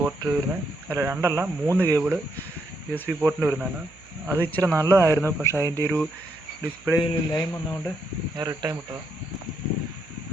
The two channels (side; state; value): right; noise; hum, 26 dB below the sound